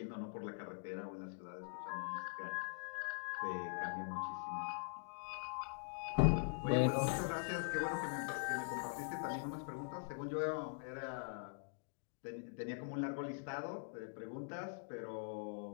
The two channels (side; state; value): right; silent; digital silence